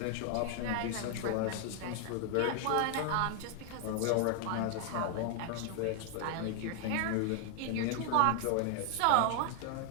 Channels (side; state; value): both; different; correlation 0.00